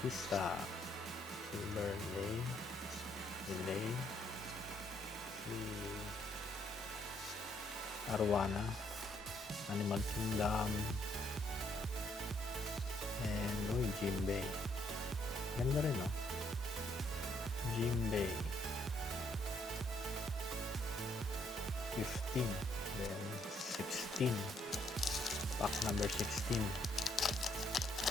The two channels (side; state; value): both; normal; correlation 0.71